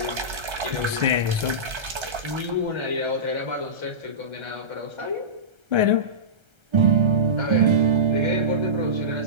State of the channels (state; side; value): late; left; 1.3 ms